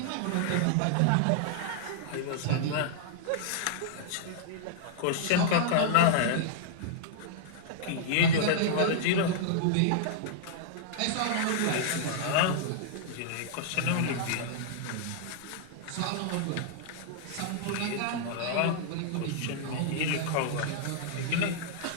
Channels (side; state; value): both; different; correlation -0.01